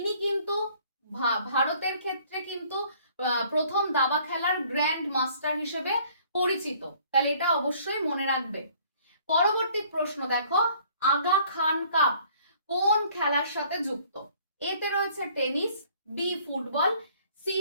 কিন্তু ভারতের ক্ষেত্রে কিন্তু প্রথম দাবা খেলার গ্র্যান্ড মাস্টার হিসেবে পরিচিত। তাহলে এটা অবশ্যই মনে রাখবে। পরবর্তী প্রশ্ন দেখো, আগা খান কাপ কোন খেলার সাথে যুক্ত? এতে রয়েছে tennis, B football, C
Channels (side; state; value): both; inverted; correlation -0.58